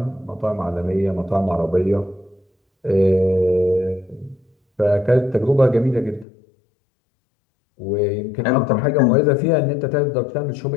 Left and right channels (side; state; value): right; drops out; at 6.2 s